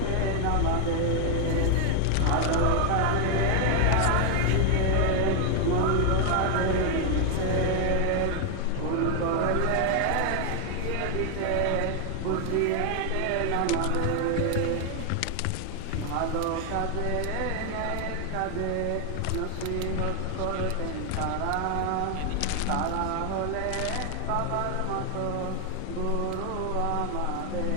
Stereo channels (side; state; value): both; different; correlation 0.00